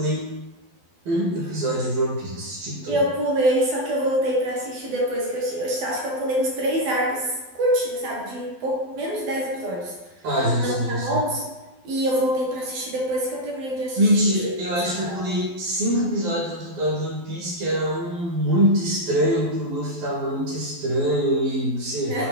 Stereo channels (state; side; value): late; left; 12 ms